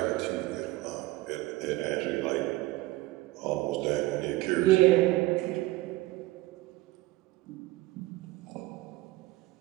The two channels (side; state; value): left; quieter; 18.6 dB